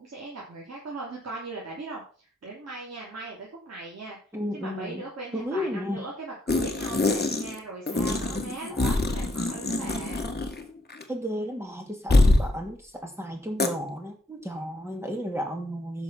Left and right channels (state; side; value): normal; both; correlation 0.76